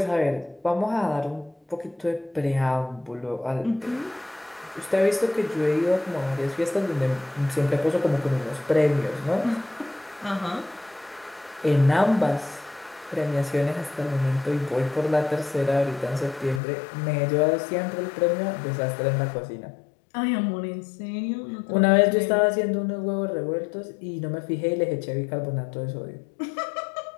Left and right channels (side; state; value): right; drops out; at 16.6 s